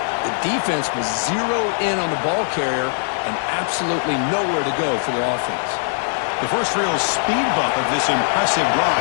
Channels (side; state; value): right; silent; digital silence